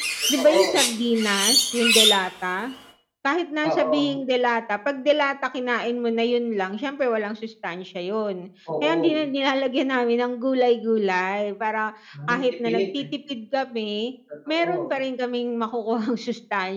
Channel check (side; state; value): both; identical; correlation 1.00